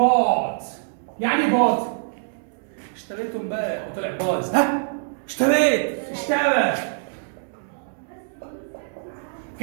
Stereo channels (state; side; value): silent; left; digital silence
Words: يعني ايه بوت؟ اشتريته امبارح وطلع بايظ. ها؟ اشترى.